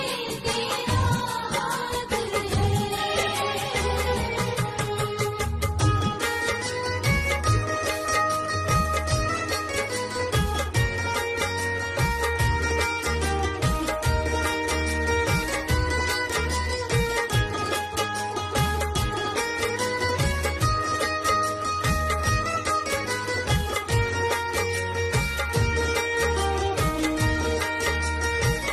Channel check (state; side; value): identical; both; correlation 1.00